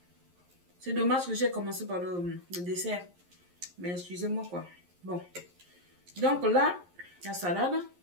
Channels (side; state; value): left; late; 11 ms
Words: c'est dommage que j'ai commencé par le dessert. Mais excusez-moi quoi. Bon. Donc là, la salade.